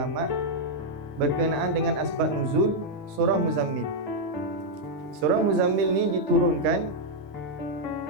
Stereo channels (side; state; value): both; normal; correlation -0.02